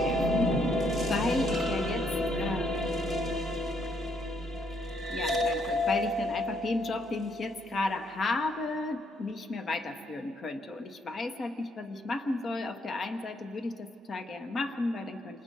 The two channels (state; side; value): normal; both; correlation 0.72